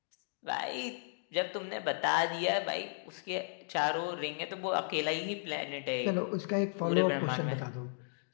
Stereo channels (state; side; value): silent; right; digital silence